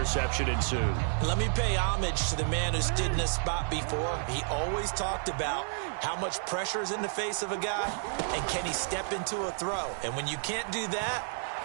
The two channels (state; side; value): silent; left; 57 dB below the other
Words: ensued. Let me pay homage to the man who stood in this spot before. He always talked about how much pressure is in the face of a guy, and can he step into a throw. And when you can't do that,